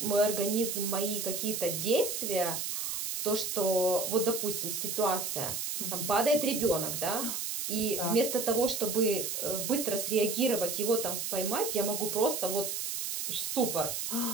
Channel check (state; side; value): noise; right; hiss, 3 dB below the sound